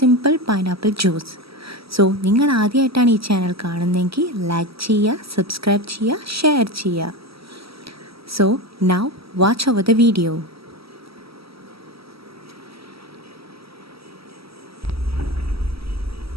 പൈനാപ്പിൾ ജ്യൂസ്. സോ നിങ്ങൾ ആദ്യമായിട്ടാണ് ഈ ചാനൽ കാണുന്നതെങ്കിൽ ലൈക്ക് ചെയ്യുക, സബ്സ്ക്രൈബ് ചെയ്യുക, ഷെയർ ചെയ്യുക. So now watch over the video.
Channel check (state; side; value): late; left; 0.76 ms